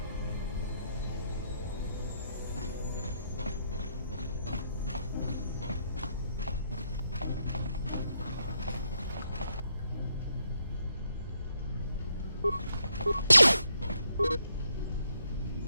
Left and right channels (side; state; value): both; inverted; correlation -0.77